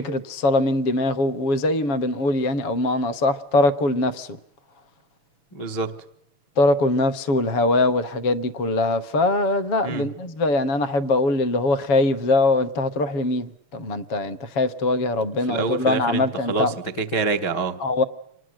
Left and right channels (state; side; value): late; right; 7.1 ms